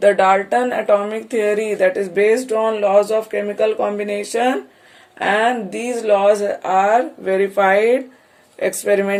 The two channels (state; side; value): identical; both; correlation 1.00